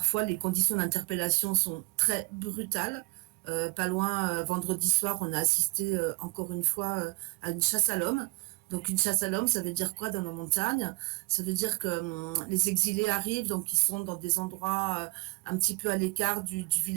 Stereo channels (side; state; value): left; quieter; 25.9 dB